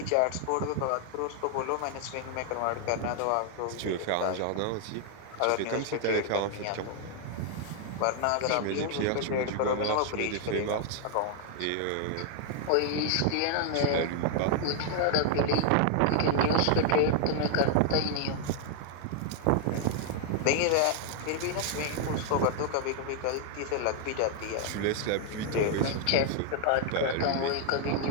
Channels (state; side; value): different; both; correlation 0.00